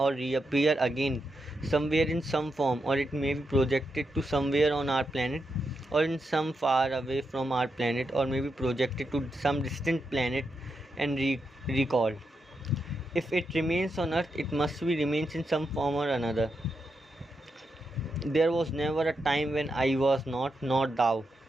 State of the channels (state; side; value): normal; both; correlation 0.85